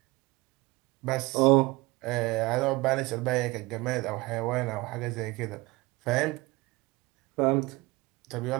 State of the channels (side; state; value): left; quieter; 22.5 dB